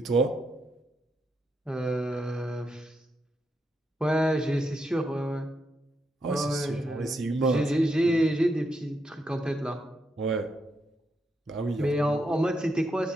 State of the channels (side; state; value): both; normal; correlation 0.81